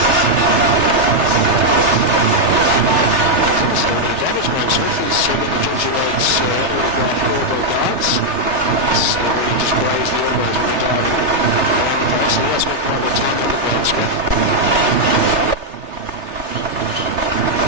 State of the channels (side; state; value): left; late; 3.3 ms